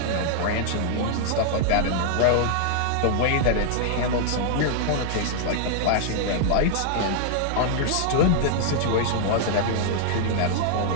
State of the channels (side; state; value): both; different; correlation -0.01